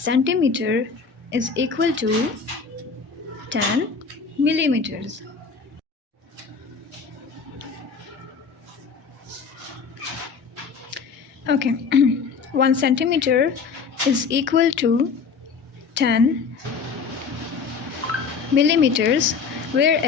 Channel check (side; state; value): right; quieter; 5.4 dB